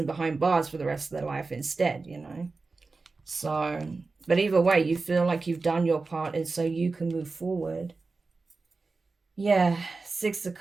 behind bars for the rest of their life instead, you know? So, but either way, you feel like you've done your part, and so you can move forward. Yeah, 6 of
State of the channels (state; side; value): quieter; left; 3.9 dB